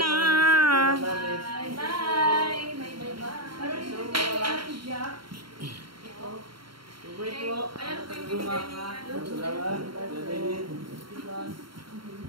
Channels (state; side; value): late; left; 0.73 ms